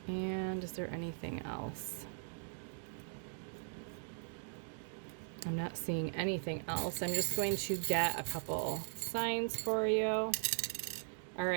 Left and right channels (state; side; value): silent; left; digital silence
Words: And is there anything else? I'm not seeing anything else. I'm just going to get a couple signs for you. All